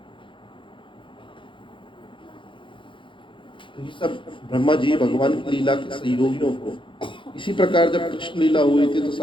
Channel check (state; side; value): late; right; 0.24 ms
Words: तो ये सब ब्रह्मा जी भगवान की लीला के सहयोगियों को। इसी प्रकार जब कृष्ण लीला हुई थी, तो